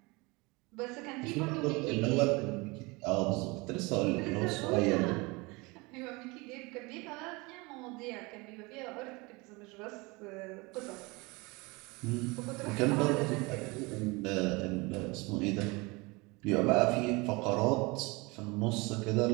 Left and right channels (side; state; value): left; quieter; 25.5 dB